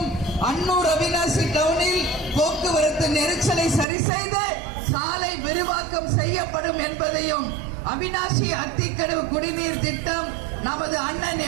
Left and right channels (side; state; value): left; drops out; at 3.9 s